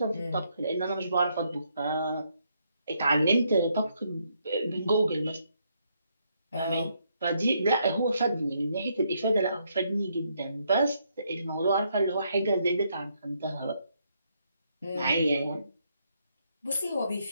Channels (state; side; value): inverted; both; correlation -0.75